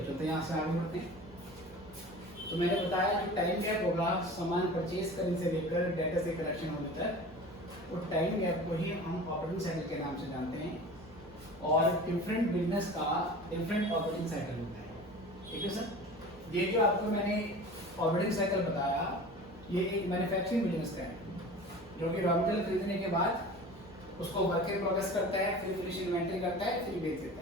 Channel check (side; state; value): both; normal; correlation 0.38